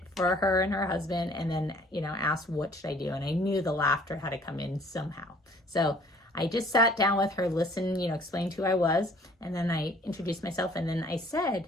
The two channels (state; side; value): normal; both; correlation 0.56